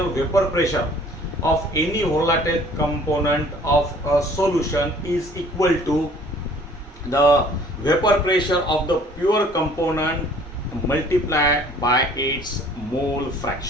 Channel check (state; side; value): normal; both; correlation 0.54